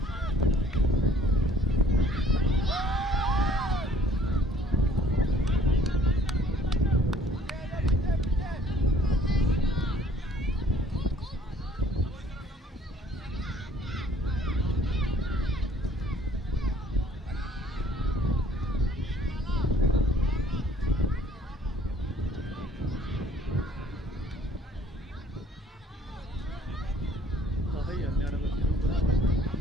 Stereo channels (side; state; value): both; normal; correlation 0.58